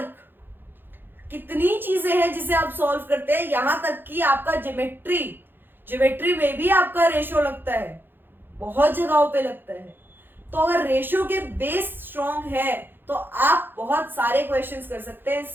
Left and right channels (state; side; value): late; left; 0.098 ms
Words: कितनी चीजें हैं जिसे आप सॉल्व करते हैं। यहां तक कि आपका ज्योमेट्री में भी आपका रेशो लगता है, बहुत जगहों पे लगता है। तो अगर रेशो के बेस स्ट्रॉन्ग है तो आप बहुत सारे क्वेश्चंस कर सकते हैं